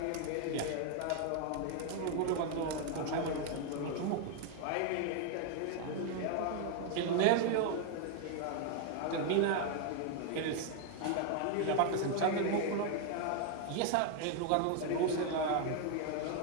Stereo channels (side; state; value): both; different; correlation 0.00